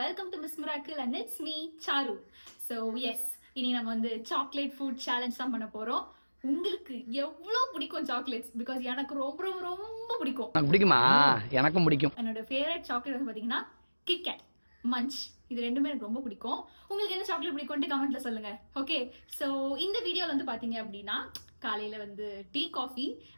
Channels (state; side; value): inverted; both; correlation -1.00